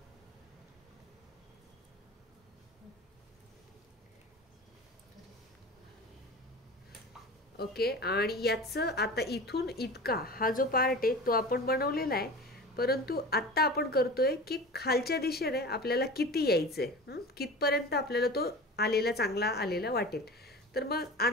ओके, आणि याचं आता इथून इतका हा जो पार्ट आहे तो आपण बनवलेला आहे, परंतु आता आपण करतोय की खालच्या दिशेने आपल्याला किती यायचंय, कितपर्यंत आपल्याला तो आलेला चांगला आलेला वाटेल। तर मग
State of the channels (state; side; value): normal; both; correlation 0.34